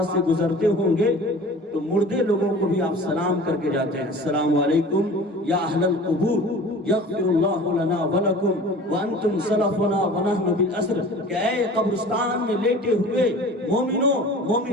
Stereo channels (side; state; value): both; normal; correlation 0.42